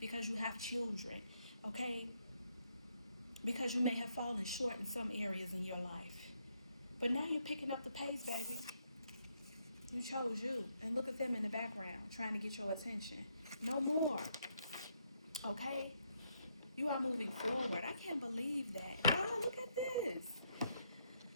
you have children, okay? Because you may have fallen short in some areas in your life. But now you're picking up the pace, baby. You chose you. And look at them in the background trying to get your attention. No more. Okay? You are moving forward. I can't believe that. Oh, look at this.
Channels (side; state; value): both; inverted; correlation -0.74